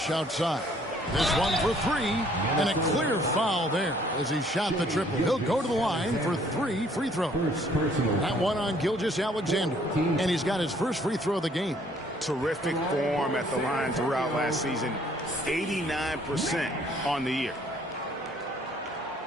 outside. This one for three, and a clear foul there as he shot the triple. He'll go to the line for 3 free throws. That one on Gilgeous-Alexander, and he's got his first free throw of the game. Terrific form at the line throughout last season. 89% on the year.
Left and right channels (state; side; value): normal; both; correlation 0.61